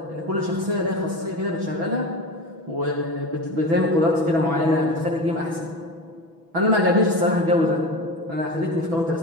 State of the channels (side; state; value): left; late; 6.1 ms